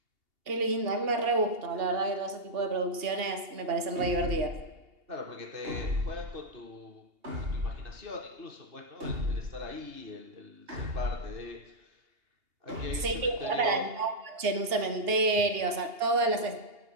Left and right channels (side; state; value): left; late; 2.8 ms